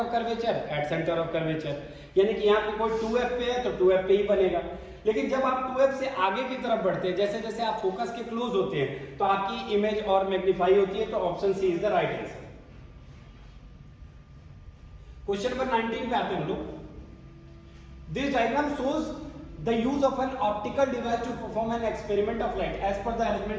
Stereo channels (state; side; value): identical; both; correlation 1.00